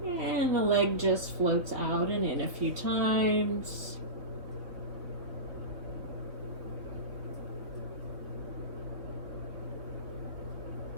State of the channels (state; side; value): late; left; 3.4 ms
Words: and the leg just floats out and in a few times.